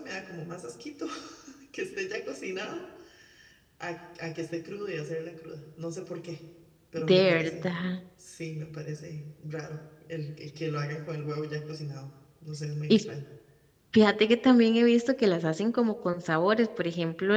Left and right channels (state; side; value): identical; both; correlation 1.00